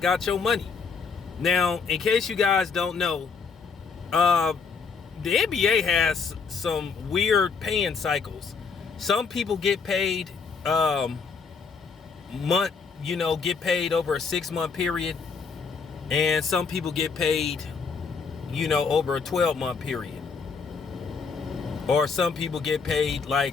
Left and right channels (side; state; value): right; quieter; 5.3 dB